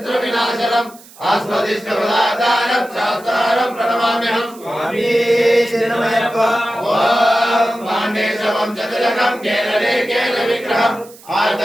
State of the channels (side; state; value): right; noise; hiss, 22 dB below the sound